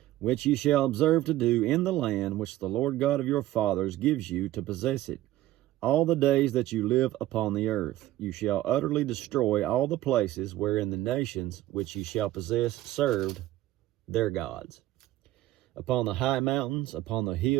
which ye shall observe to do in the land which the Lord God of your fathers gives you to possess it, all the days that you live upon the earth. You shall utterly destroy all the places wherein the nations which ye shall possess served their gods. Upon the high mountains, upon the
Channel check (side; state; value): left; quieter; 15.2 dB